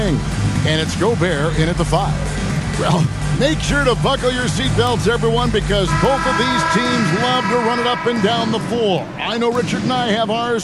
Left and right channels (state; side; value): identical; both; correlation 1.00